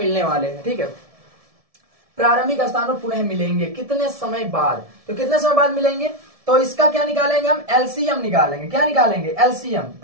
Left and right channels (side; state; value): left; late; 1.7 ms